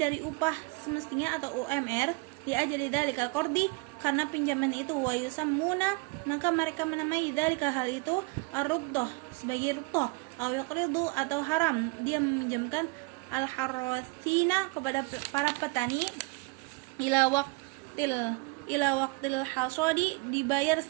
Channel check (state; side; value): quieter; left; 27.6 dB